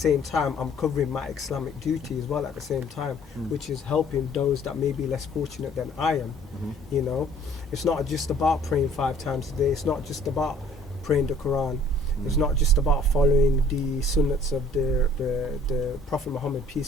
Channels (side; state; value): both; normal; correlation 0.56